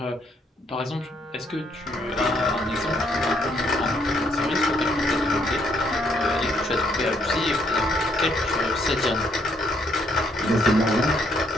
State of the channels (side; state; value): both; normal; correlation 0.70